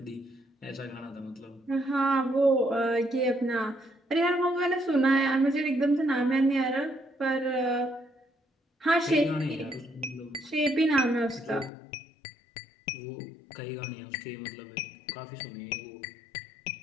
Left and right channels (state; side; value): drops out; right; at 11.7 s